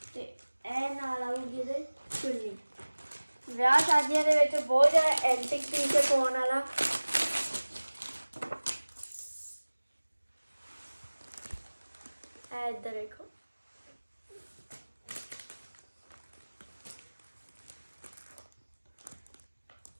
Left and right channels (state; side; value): inverted; both; correlation -1.00